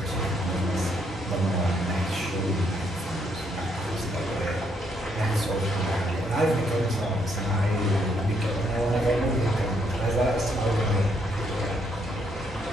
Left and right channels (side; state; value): both; normal; correlation 0.73